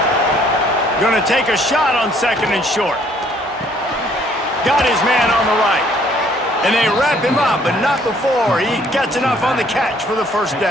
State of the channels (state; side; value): normal; both; correlation 0.62